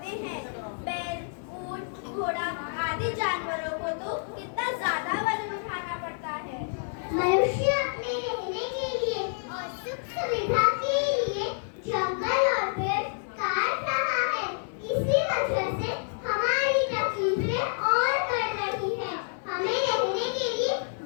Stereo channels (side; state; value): right; silent; 59 dB below the other